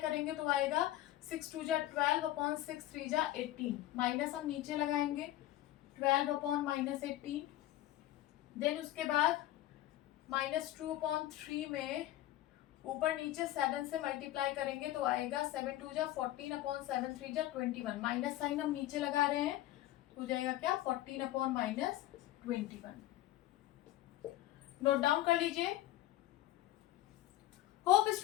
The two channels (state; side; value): quieter; right; 14.8 dB